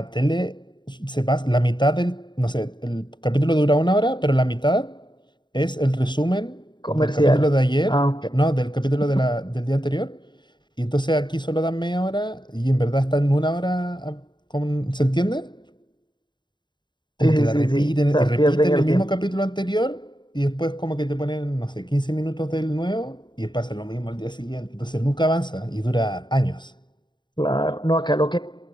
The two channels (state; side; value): late; right; 0.22 ms